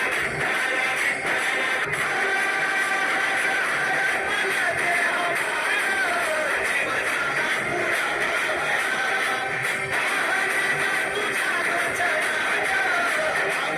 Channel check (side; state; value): both; identical; correlation 1.00